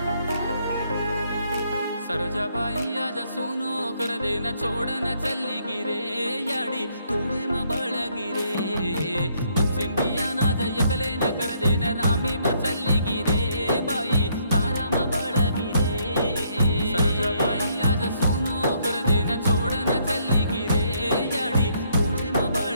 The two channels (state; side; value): inverted; both; correlation -0.70